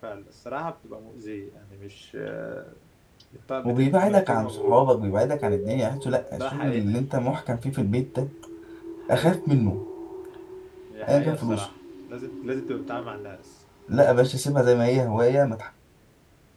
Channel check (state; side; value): identical; both; correlation 1.00